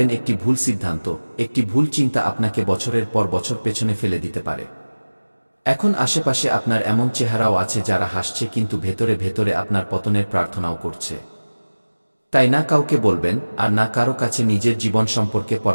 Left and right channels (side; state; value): both; inverted; correlation -1.00